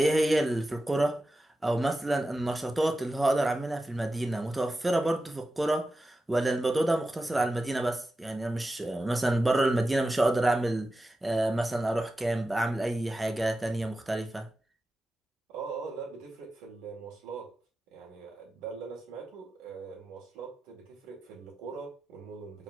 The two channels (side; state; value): both; normal; correlation 0.92